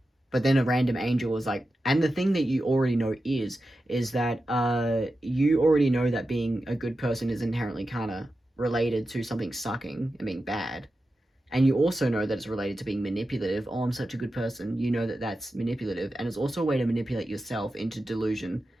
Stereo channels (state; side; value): normal; both; correlation 0.91